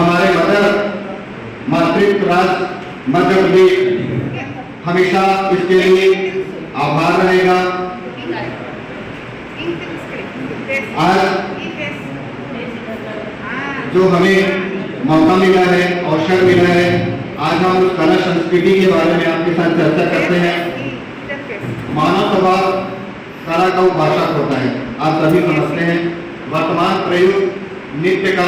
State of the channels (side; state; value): both; identical; correlation 1.00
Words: मातृत्व राज्य मध्य प्रदेश हमेशा इसके लिए आभार रहेगा। आज जो हमें मौका मिला है, अवसर मिला है, आज हम उस कला संस्कृति के बारे में आपके साथ चर्चा करते हैं। मानव स्वभाव कला का उपासक होता है, आप सभी समझते हैं। वर्तमान प्रयुक्त नृत्य